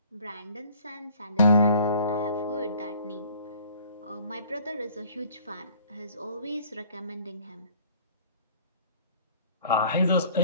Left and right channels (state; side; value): inverted; both; correlation -0.54